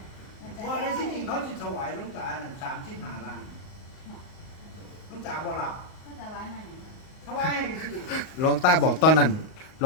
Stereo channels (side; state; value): right; late; 38 ms